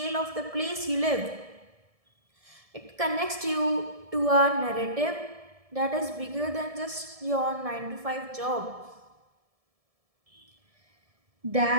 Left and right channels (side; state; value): left; late; 1.7 ms